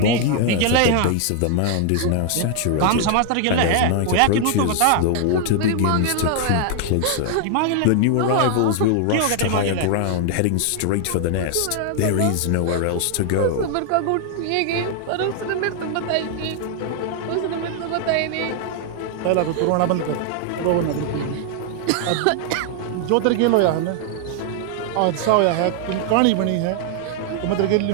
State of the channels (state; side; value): different; both; correlation 0.00